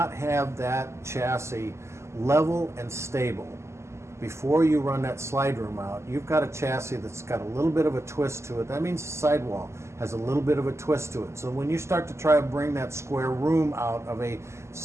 have that chassis level and stable before you run that slide room out, you've got a chassis that's got a little bit of a twist to it. That means the sidewall has a little bit of a twist to it. So when you start to try to bring that square room out of a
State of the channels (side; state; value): left; late; 0.13 ms